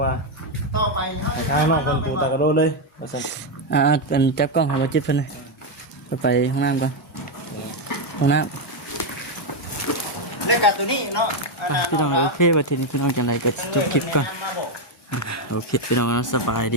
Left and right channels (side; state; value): both; normal; correlation 0.04